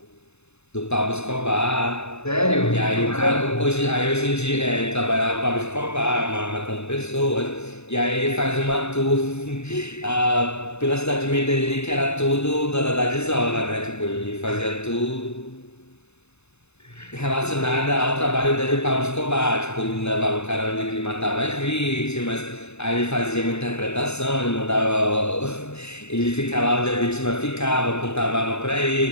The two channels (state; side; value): late; right; 0.81 ms